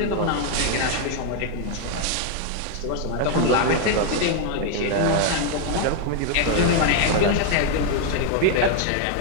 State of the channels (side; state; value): both; different; correlation 0.01